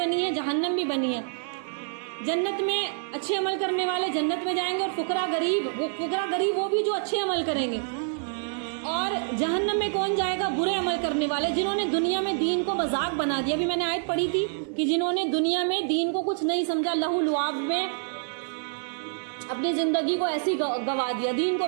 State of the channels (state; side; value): silent; left; digital silence